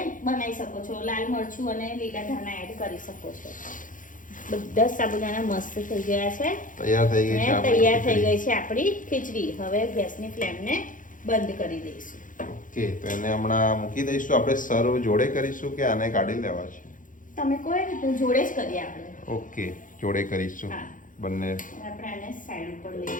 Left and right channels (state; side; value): late; right; 0.38 ms